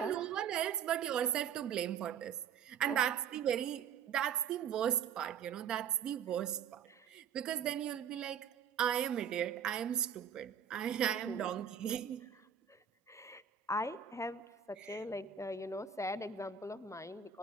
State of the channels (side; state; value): left; quieter; 7.8 dB